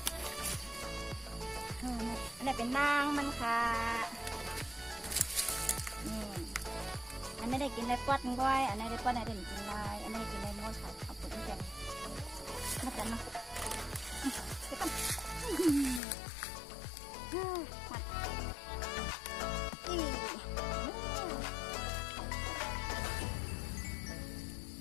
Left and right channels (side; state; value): right; drops out; at 16.0 s